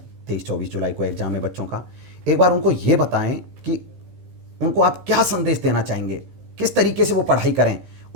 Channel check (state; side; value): late; left; 15 ms